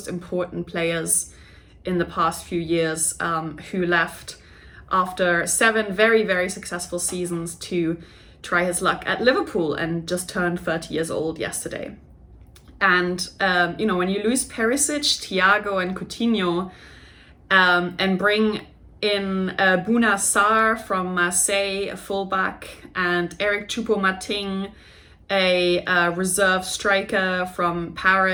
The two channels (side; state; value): both; identical; correlation 1.00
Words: important players in the past few years, who left after 7 very, very successful seasons to try his luck at Liverpool and just turned 30 years old yesterday. And, when you lose Perisic, Thiago and Coutinho and bring in Bouna Sarr from Marseille, a fullback, and Eric Choupo-Moting, a reserve striker from